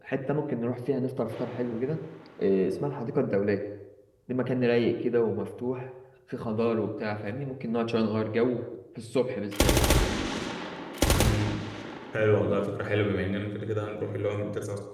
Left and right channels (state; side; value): identical; both; correlation 1.00